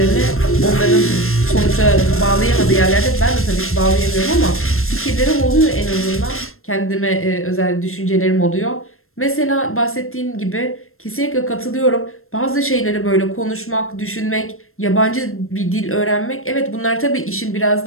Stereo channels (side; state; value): right; late; 0.62 ms